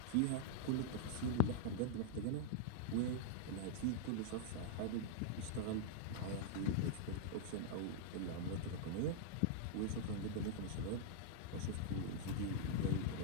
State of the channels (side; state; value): both; different; correlation 0.00